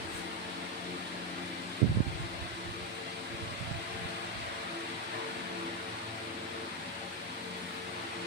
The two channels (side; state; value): both; normal; correlation 0.07